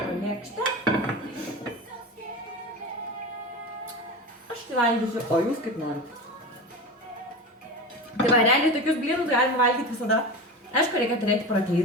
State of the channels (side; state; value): both; normal; correlation 0.27